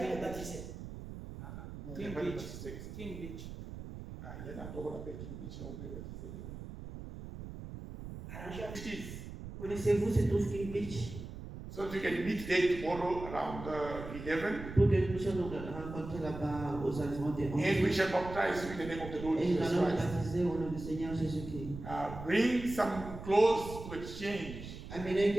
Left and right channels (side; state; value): right; noise; rumble, 10 dB below the sound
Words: baptisé. No, King never Beach. baptized. King Beach. Il y en a encore on appelle King Beach, là on peut baptiser demain. Arrangez. It is. Connaissez-vous ce trouve King Beach? So you can meet there tomorrow around 11, Pour que nous puissions nous rencontrer là-bas aux environs des 11h. and we shall baptize you in the name of the Lord Et nous Jesus allons Christ. baptiser au nom du Seigneur Jésus-Christ. Bring some clothes to exchange, Amenez